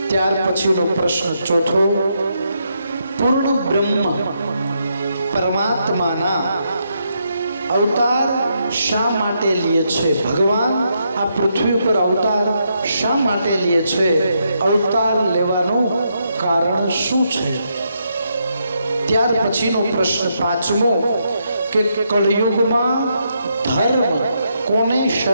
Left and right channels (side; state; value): both; inverted; correlation -0.79